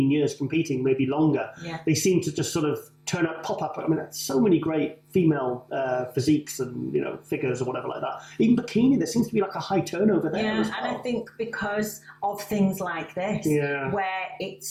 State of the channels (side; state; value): both; identical; correlation 1.00